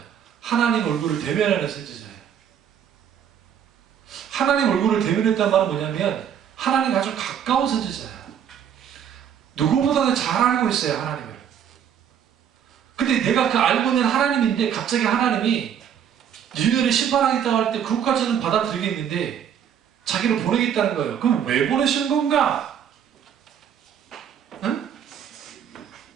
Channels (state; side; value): quieter; left; 8.8 dB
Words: 하나님 얼굴을 대면하는 선지자예요. 하나님 얼굴을 대면했다는 말은 뭐냐면 하나님과 아주 가까운 선지자예요. 누구보다도 잘 알고 있어요, 하나님을. 근데 내가 그 알고 있는 하나님인데 갑자기 하나님이 니느웨를 심판하겠다고 할 때 그것까지는 받아들이겠는데 자기를 보내겠다는 거예요. 그럼 왜 보내시는 건가? 응?